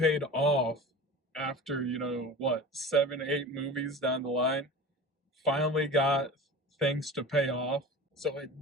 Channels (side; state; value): both; normal; correlation 0.35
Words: off after, you know, what, 7, 8 movies down the line, finally got things to pay off. So it